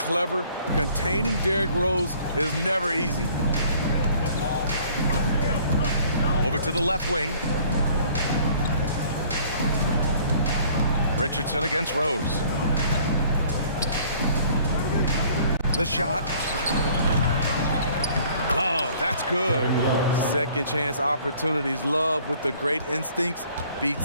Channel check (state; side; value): inverted; both; correlation -0.56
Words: Containing Derrick Rose is never easy. Over to the left wing. Richardson against Rose. The shot. Love, that's good. Second chance opportunities. Love with the great instincts